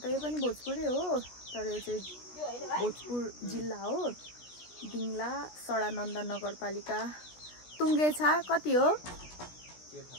यो पनि भोजपुरै हो, तर यो चाहिँ भोजपुर जिल्ला हो। दिङला सडानन्द नगरपालिका टुङ्गेछा कति हो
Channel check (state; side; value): late; right; 16 ms